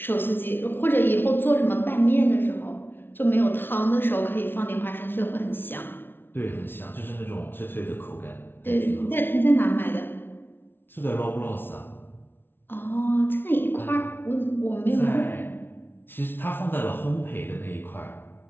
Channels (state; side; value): late; right; 0.11 ms